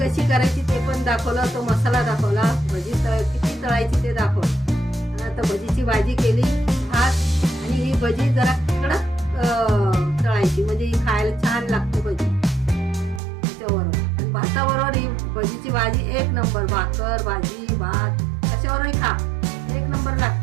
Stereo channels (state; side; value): drops out; left; at 13.2 s